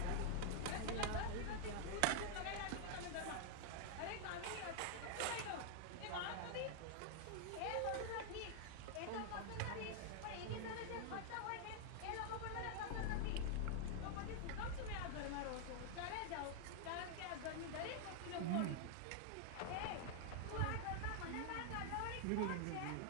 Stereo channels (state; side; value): different; both; correlation 0.00